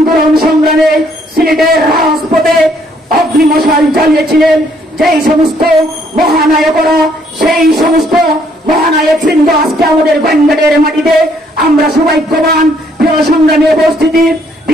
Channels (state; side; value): normal; both; correlation 0.67